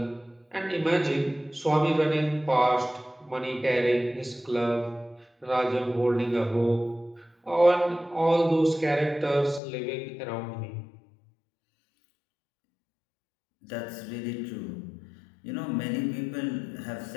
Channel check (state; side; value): drops out; right; at 9.6 s